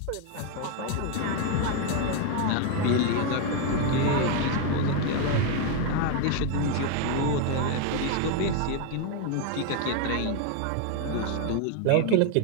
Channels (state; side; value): different; both; correlation 0.01